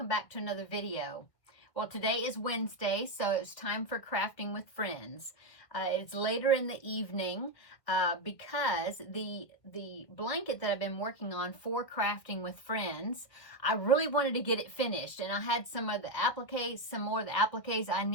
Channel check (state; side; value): late; right; 1.6 ms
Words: back to another video. Well, today is Wednesday, so it's time for crafting with friends. It's later in the evening because the blanket that I've been working on for crafting with friends, I really wanted to get it finished, and I had some more of the appliques I